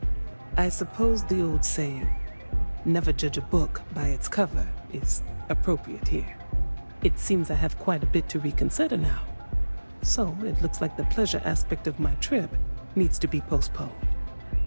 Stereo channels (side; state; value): both; inverted; correlation -1.00